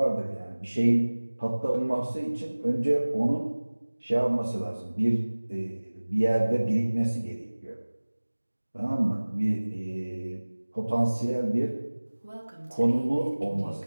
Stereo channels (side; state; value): both; inverted; correlation -1.00